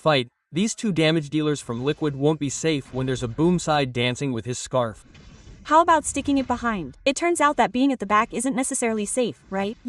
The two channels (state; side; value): identical; both; correlation 1.00